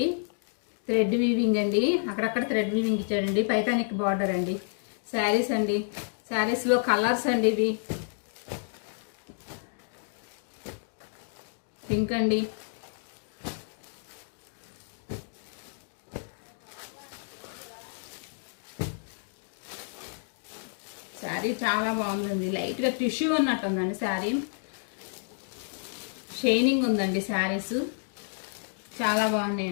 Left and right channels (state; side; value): silent; right; digital silence